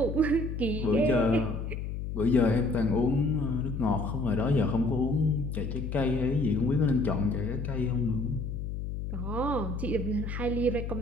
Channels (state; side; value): noise; left; hum, 5 dB below the sound